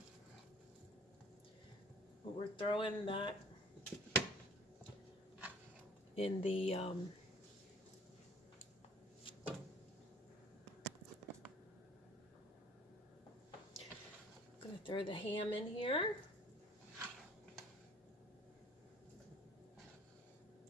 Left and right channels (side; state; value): both; normal; correlation 0.52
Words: But we're throwing that in the gonna throw the ham in here.